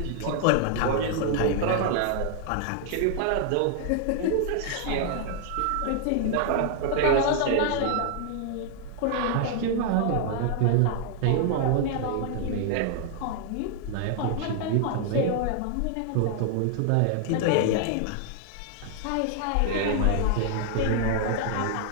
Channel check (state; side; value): different; both; correlation 0.00